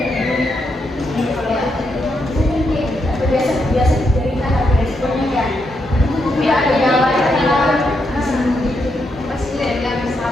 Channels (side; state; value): both; normal; correlation 0.81